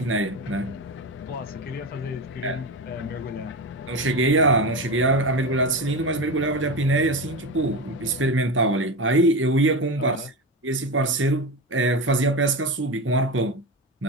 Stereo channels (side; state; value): both; normal; correlation 0.20